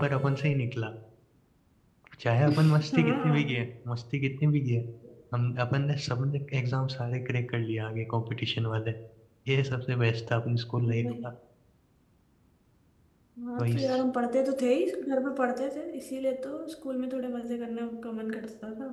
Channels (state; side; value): identical; both; correlation 1.00